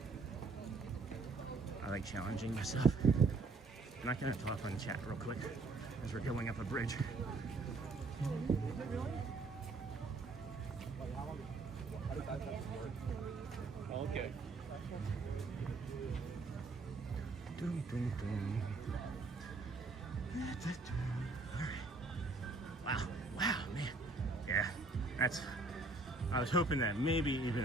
I like challenging myself. I'm not gonna talk on chat real quick as we're going up a bridge. Okay. Doom, doom, doom. Wow, wow, man. Yeah, I was hoping that maybe even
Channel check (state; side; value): quieter; left; 3.7 dB